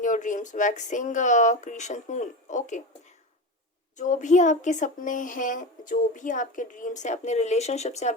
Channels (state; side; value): normal; both; correlation 0.23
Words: your dreams, waxing creation moon. Okay, जो भी आपके सपने हैं, जो भी आपके ड्रीम्स हैं, अपने रिलेशनशिप से